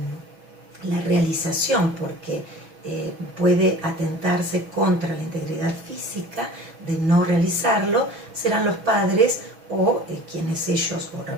la realización porque puede atentarse contra la integridad física de no realizarlo, serán los padres o quienes ellos, o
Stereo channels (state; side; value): late; left; 6.1 ms